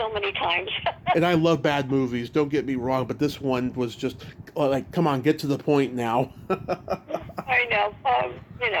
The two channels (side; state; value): both; identical; correlation 1.00